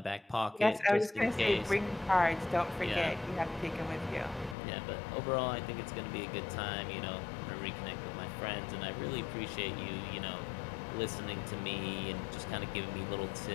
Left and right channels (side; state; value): right; drops out; at 4.5 s